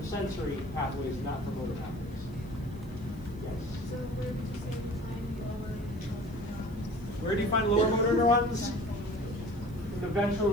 sensory pathways, not for motor pathways. Yes? So where would you say you find lower neurons? Where do you find lower motor neurons? In the ventral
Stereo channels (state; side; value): noise; right; hiss, 28 dB below the sound